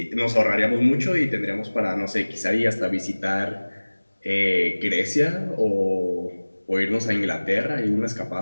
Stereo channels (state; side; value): inverted; both; correlation -1.00